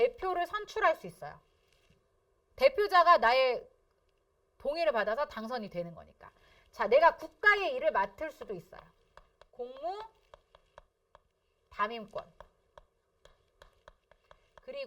선출할 수 있어요. 대표자가 나의 동의를 받아서 당선이 되는 거니까. 자, 내가 국가의 일을 맡을 수도 있어요. 공무, 담임권.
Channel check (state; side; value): identical; both; correlation 1.00